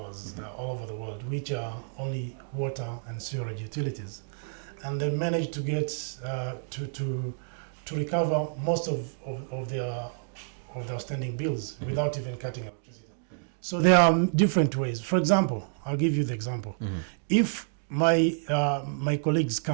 all over the world, which are only water and sewerage utilities, and they managed to get to recover most of their outstanding bills without even cutting electricity. So there are different ways. For example, I'll give you the example. If my colleagues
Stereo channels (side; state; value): left; silent; 59 dB below the other